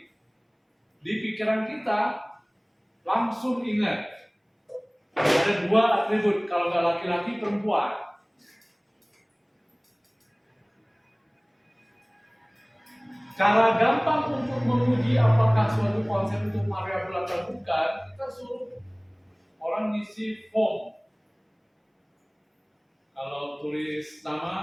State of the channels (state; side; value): identical; both; correlation 1.00